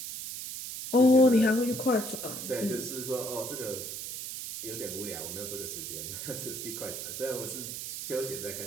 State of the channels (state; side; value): noise; right; hiss, 7 dB below the sound